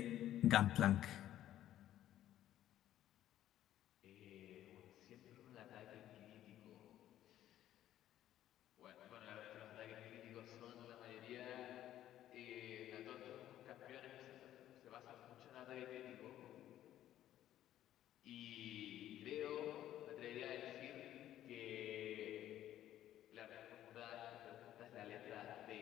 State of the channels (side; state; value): right; quieter; 12.4 dB